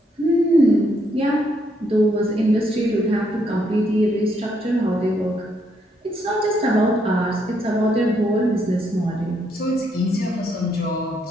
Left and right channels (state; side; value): normal; both; correlation 0.74